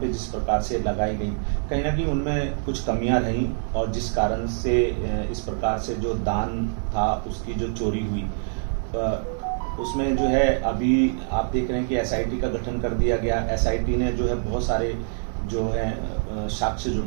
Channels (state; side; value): silent; left; 62 dB below the other